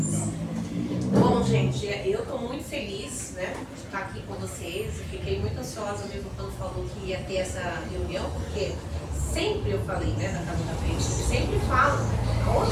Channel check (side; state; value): both; identical; correlation 1.00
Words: Bom, gente, eu estou muito feliz, né, de estar aqui com vocês. Eu fiquei muito ansiosa mesmo quando falou que ia ter essa reunião, porque sempre eu falei, né, na Casa da Frente, sempre falo,